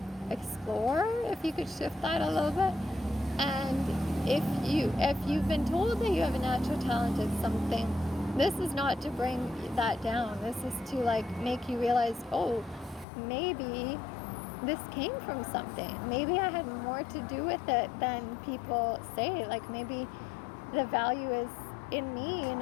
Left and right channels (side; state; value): right; drops out; at 13.1 s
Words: explore if you could shift that a little bit. And if you've been told that you have a natural talent at something, this is not to bring that down. This is to make you realize, oh, maybe this came from something. Maybe I had more to do with it than people say. Like, maybe the value is in me,